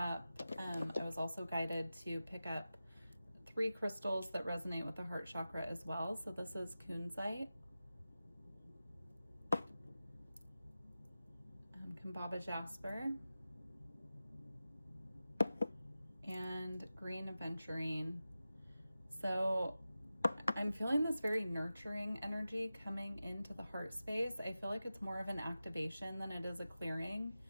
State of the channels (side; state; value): both; inverted; correlation -0.93